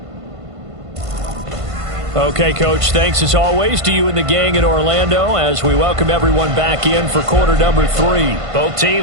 Okay, Coach, thanks as always to you and the gang in Orlando as we welcome everyone back in for quarter number 3. Both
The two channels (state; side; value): late; left; 1.5 ms